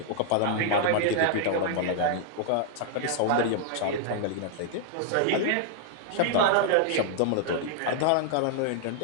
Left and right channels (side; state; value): both; different; correlation -0.01